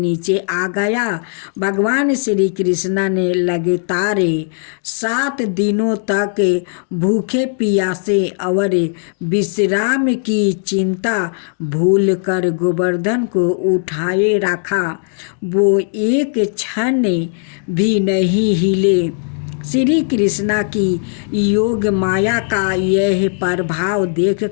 आ गया। भगवान श्री कृष्णा ने लगातार 7 दिनों तक भूखे प्यासे और विश्राम की चिंता भूल कर गोवर्धन को उठाए रखा। वो एक क्षण भी नहीं हिले। श्री कृष्णा की योग माया का यह प्रभाव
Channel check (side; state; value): right; silent; 68 dB below the other